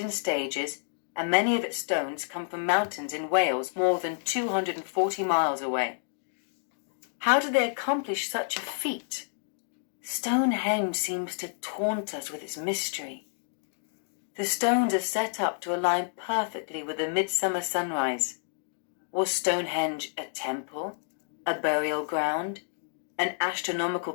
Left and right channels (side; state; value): right; silent; digital silence